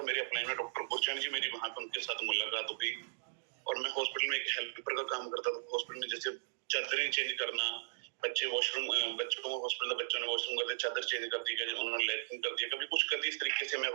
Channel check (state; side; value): silent; left; digital silence